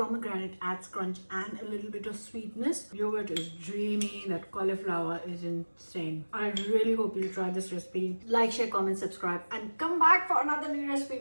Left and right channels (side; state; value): both; inverted; correlation -1.00